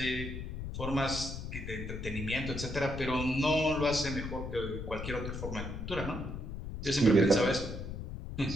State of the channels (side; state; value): left; noise; rumble, 7 dB below the sound